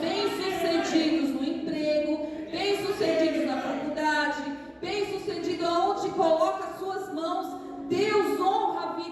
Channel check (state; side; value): identical; both; correlation 1.00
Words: no emprego, bem-sucedidos na faculdade, bem-sucedidos aonde coloca as suas mãos. Deus honra a